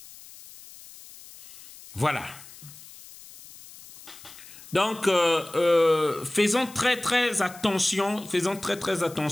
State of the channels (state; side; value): noise; left; hiss, 19 dB below the sound